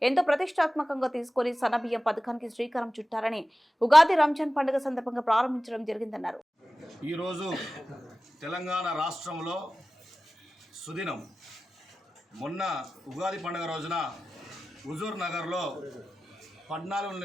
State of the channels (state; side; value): normal; both; correlation 0.95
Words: ఎంతో ప్రతిష్టాత్మకంగా తీసుకుని సన్నబియ్యం పథకానికి శ్రీకారం చుట్టారని ఉగాది రంజాన్ పండుగ సందర్భంగా ప్రారంభించడం జరిగిందన్నారు. ఈరోజు తెలంగాణ రాష్ట్రంలో సుదినం మొన్న ఉగాది పండుగ రోజున హుజూర్ నగర్లో 14